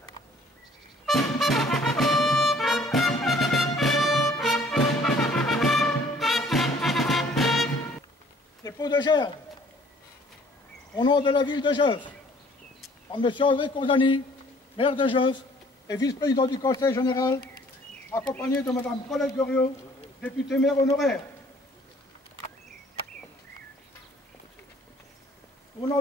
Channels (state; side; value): normal; both; correlation 0.57